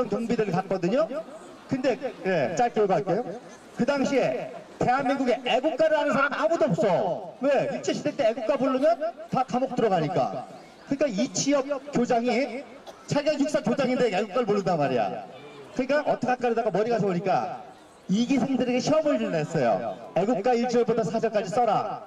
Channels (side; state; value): both; identical; correlation 1.00